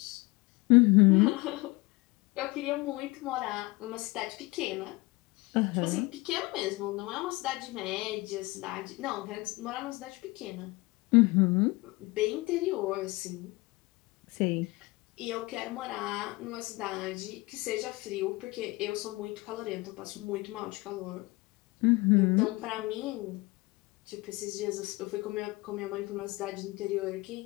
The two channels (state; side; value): quieter; right; 23.0 dB